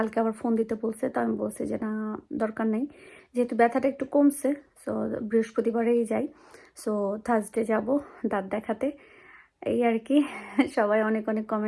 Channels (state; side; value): identical; both; correlation 1.00